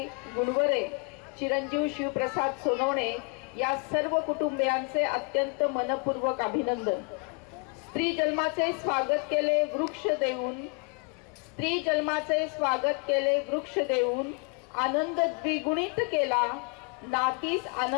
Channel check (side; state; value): right; quieter; 34.9 dB